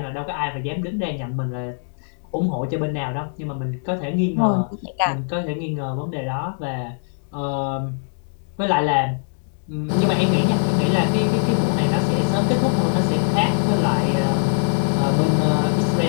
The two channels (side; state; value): right; silent; 58 dB below the other